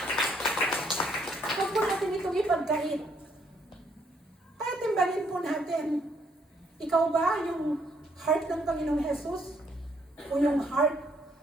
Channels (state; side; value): normal; both; correlation 0.70